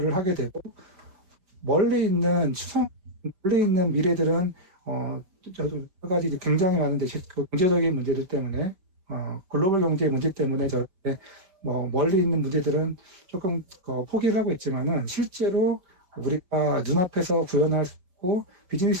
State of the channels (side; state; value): left; late; 5.2 ms